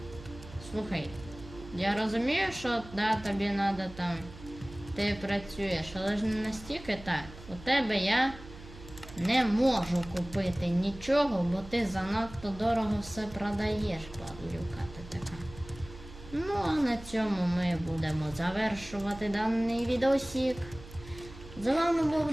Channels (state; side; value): noise; right; hum, 17 dB below the sound